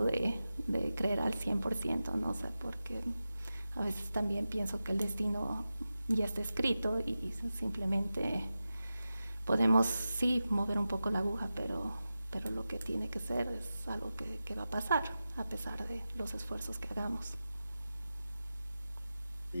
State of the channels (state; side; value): inverted; both; correlation -0.93